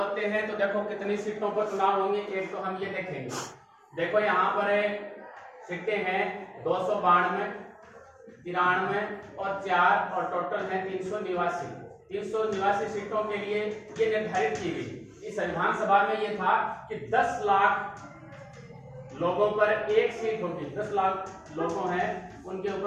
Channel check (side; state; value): both; identical; correlation 1.00